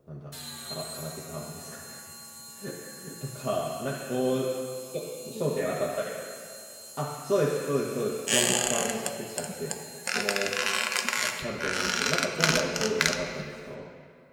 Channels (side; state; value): both; identical; correlation 1.00